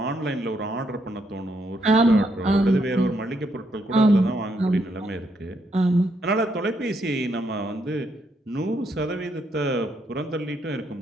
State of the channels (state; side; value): normal; both; correlation 0.76